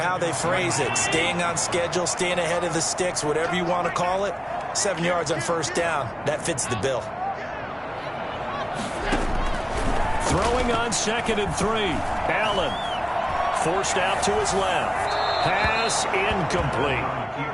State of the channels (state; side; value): identical; both; correlation 1.00